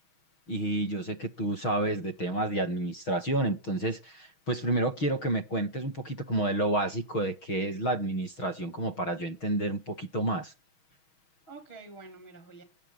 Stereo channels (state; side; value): late; right; 6.3 ms